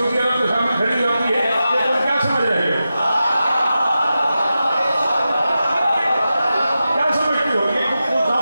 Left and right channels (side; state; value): both; inverted; correlation -0.91